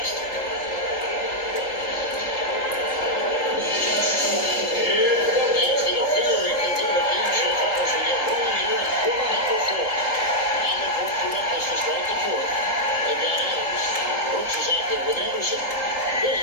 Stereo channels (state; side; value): late; right; 3.8 ms